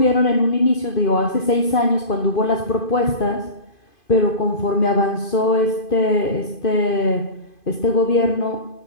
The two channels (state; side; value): late; right; 2.5 ms